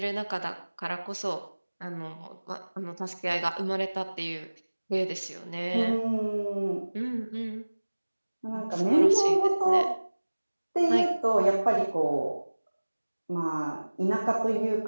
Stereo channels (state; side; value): inverted; both; correlation -1.00